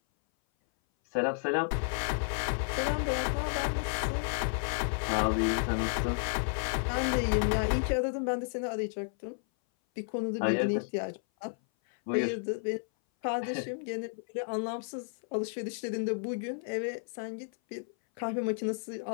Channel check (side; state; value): right; silent; 56 dB below the other